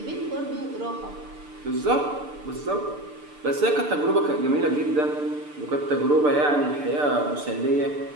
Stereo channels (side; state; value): left; late; 6.8 ms